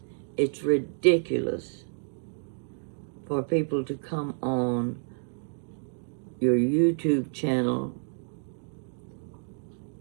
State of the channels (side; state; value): left; silent; digital silence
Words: It's ridiculous for people to come on your YouTube channel